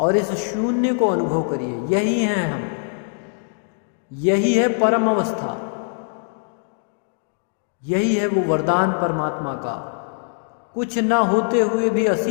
इस शून्य को अनुभव करिए। यही हैं हम, यही है परम अवस्था, यही है वो वरदान परमात्मा का। कुछ न होते हुए भी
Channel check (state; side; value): silent; right; digital silence